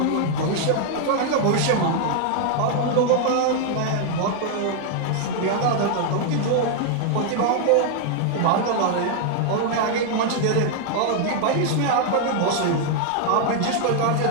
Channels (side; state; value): both; different; correlation 0.00